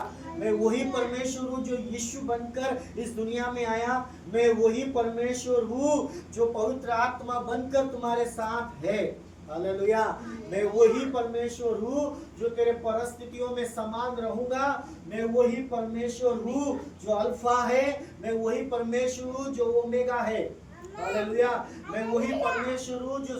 मैं वही परमेश्वर हूँ जो यीशु बनकर इस दुनिया में आया, मैं वही परमेश्वर हूँ जो पवित्र आत्मा बनकर तुम्हारे साथ है। हालेलुया। मैं वही परमेश्वर हूँ जो तेरे परिस्थितियों में समान रहूंगा, मैं वही परमेश्वर हूँ जो अल्फा है, मैं वही परमेश्वर हूँ जो ओमेगा है। हालेलुया। मैं वही परमेश्वर हूँ जो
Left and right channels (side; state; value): both; identical; correlation 1.00